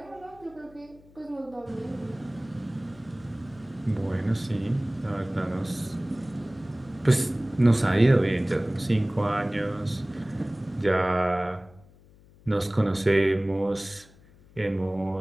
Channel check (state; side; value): noise; left; hum, 26 dB below the sound